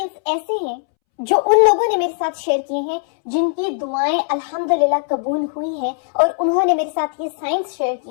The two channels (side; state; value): right; silent; 66 dB below the other